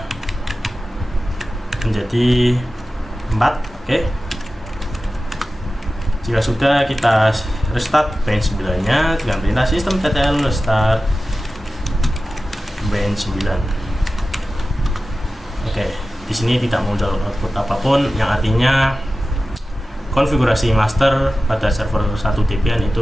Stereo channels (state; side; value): normal; both; correlation 0.95